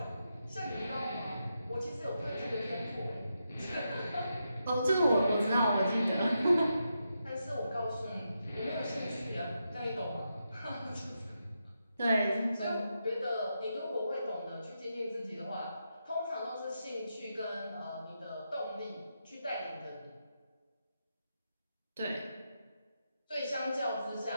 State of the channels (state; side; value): inverted; both; correlation -0.85